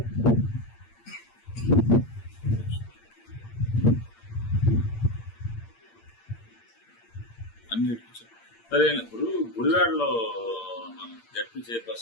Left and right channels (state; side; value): late; right; 8.7 ms